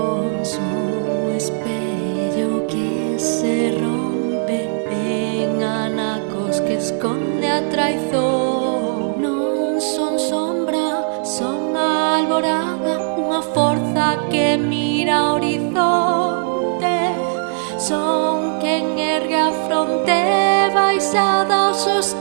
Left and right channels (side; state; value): left; silent; 67 dB below the other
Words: son espello que se rompe en anacos que esconde a traizón. Non son sombra, son alborada, unha forza que mira ao horizonte. Son quen ergue a fronte baixada ao